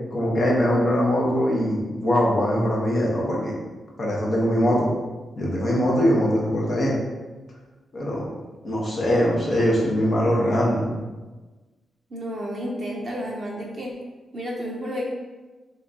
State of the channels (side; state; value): both; normal; correlation 0.85